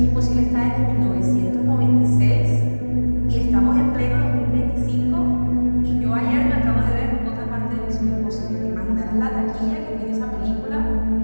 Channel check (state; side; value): inverted; both; correlation -1.00